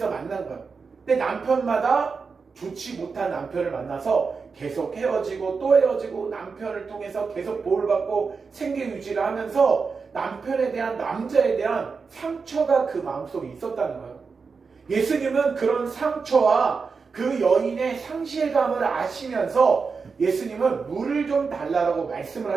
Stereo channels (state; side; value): quieter; left; 5.0 dB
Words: 만난 거예요. 근데 남편마다 좋지 못한 남편을 만나서 계속 헤어지고 또 헤어지고 남편을 통해서 계속 보호를 받고 생계 유지를 하면서 남편에 대한, 남자에 대한 상처가 그 마음속에 있었다는 거예요. 예수님은 그런 상처와 그 여인의 상실감을 아시면서 예수님은 물을 좀 달라고 말씀을